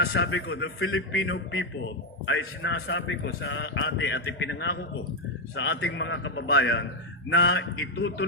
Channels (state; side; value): normal; both; correlation 0.04